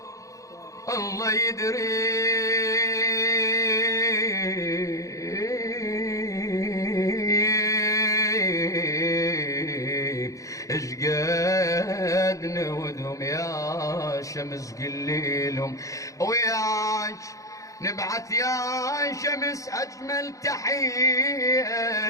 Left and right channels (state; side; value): late; right; 0.16 ms